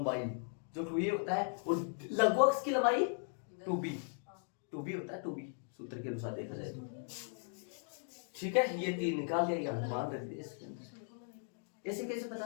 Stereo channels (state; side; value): silent; right; 53 dB below the other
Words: जो 2a होता है, और लघु अक्ष की लंबाई 2b होता है, 2b सूत्र के अनुसार देखा जाए तो। ठीक है, ये 3 निकाल दिया, यहां मान कर दिया इसके अंदर। ऐसे कैसे पता